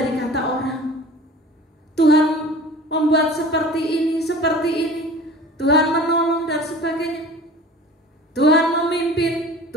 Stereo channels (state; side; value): normal; both; correlation 0.42